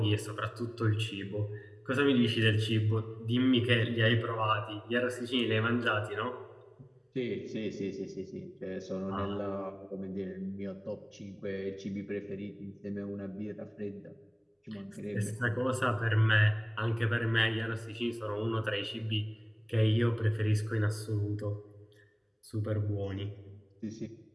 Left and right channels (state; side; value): identical; both; correlation 1.00